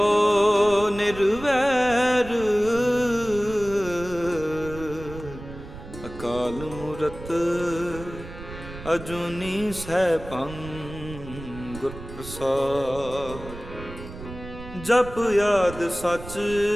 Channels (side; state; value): right; noise; rumble, 13 dB below the sound